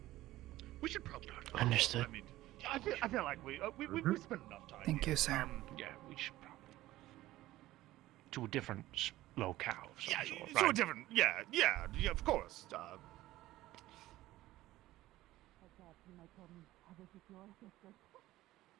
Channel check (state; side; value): quieter; left; 16.1 dB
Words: We should probably. Understood. I mean, I feel like we spent enough time. Thank you, sir. Yeah, we should probably to a different locale. Of some sort, to a right? different. Yeah, of course.